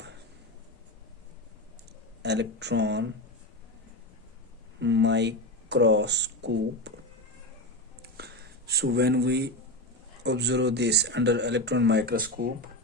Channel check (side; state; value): both; normal; correlation 0.17